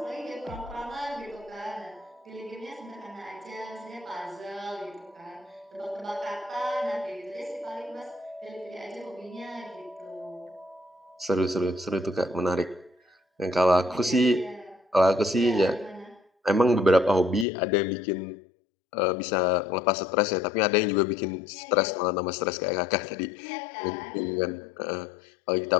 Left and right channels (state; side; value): drops out; right; at 17.4 s